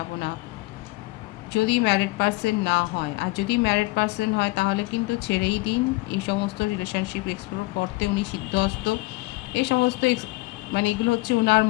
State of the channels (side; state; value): right; quieter; 21.9 dB